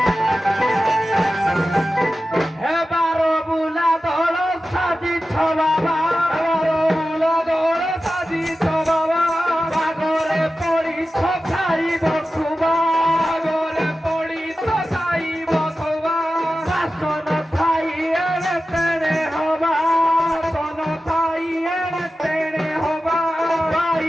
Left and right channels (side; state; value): both; normal; correlation 0.94